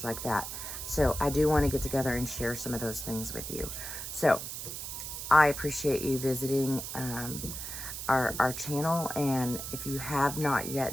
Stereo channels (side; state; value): right; noise; hiss, 7 dB below the sound